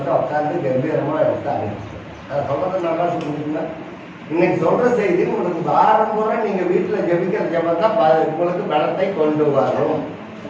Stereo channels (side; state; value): both; identical; correlation 1.00